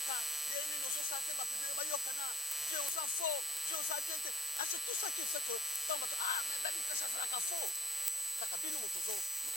Denini, aux autres, Bapi Yokana, Dieu aux infos, Dieu aux habientes. Ah, c'est tout ça qui fait que. Mais Ben Mukasha, c'est la faux. Kakabino Motozo,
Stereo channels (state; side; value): normal; both; correlation 0.55